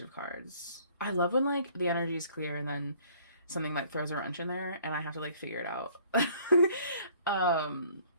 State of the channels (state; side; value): inverted; both; correlation -0.57